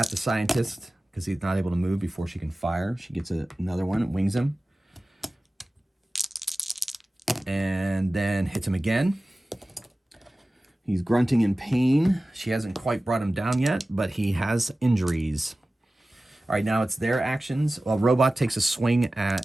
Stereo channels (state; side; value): normal; both; correlation 0.96